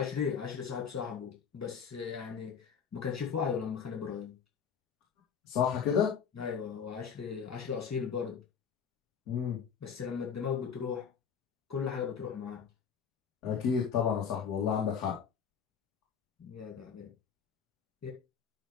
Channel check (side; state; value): right; quieter; 7.0 dB